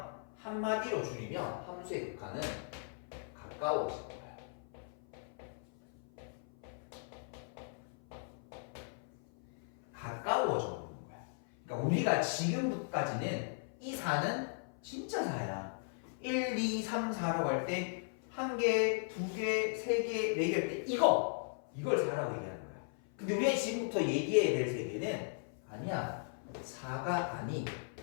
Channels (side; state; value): right; silent; 53 dB below the other